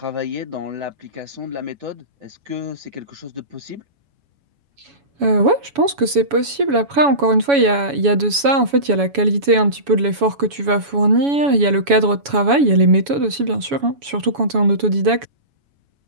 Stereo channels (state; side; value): late; left; 7.1 ms